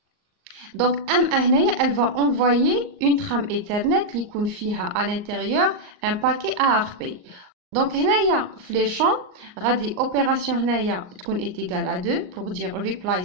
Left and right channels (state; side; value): late; left; 38 ms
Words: Donc, M1, elle va envoyer une trame Ethernet qui contient à l'intérieur un paquet ARP. Donc, les champs, opération est égale à 2 pour dire reply,